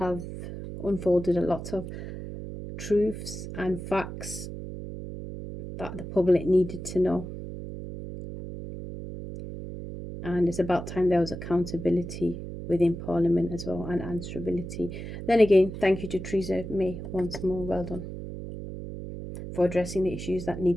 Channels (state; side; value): noise; right; hum, 9 dB below the sound